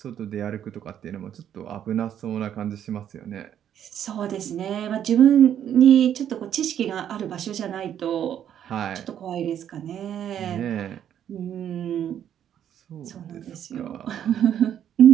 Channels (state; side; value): quieter; left; 9.9 dB